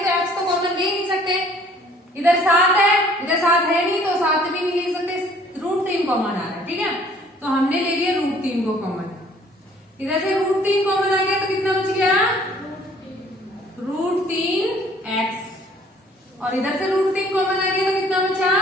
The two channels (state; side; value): normal; both; correlation 0.57